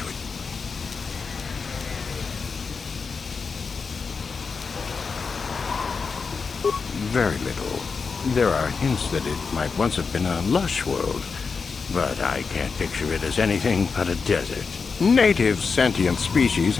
it. Very little. There are hints that it might once have been a lush world, but I can't picture it as anything but a desert. Native sentient species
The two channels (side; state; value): right; quieter; 5.1 dB